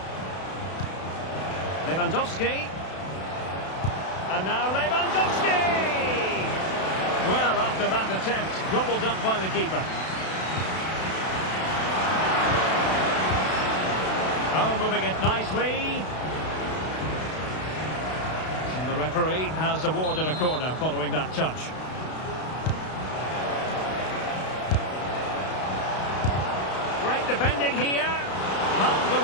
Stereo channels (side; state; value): right; late; 32 ms